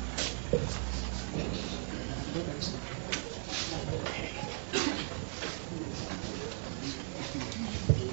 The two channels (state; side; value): silent; left; 53 dB below the other